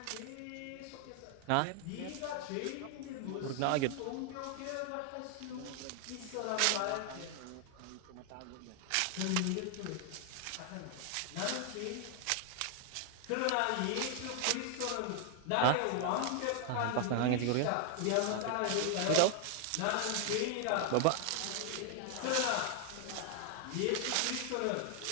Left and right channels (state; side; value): different; both; correlation 0.00